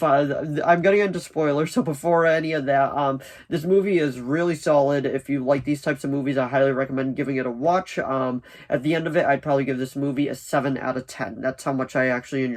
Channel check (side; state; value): both; identical; correlation 1.00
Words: I'm gonna get into spoilers, so before any of that, this movie is really solid. If you like these types of movies, I highly recommend giving it a watch. At the end of it, I'd probably give this movie a 7 out of 10. That's how much I actually